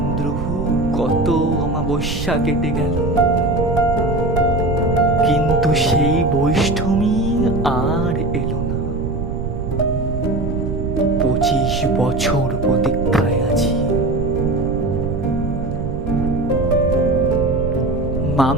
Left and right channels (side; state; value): right; noise; rumble, 5 dB below the sound